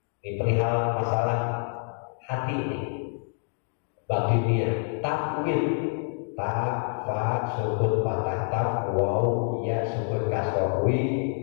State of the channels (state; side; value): silent; right; 56 dB below the other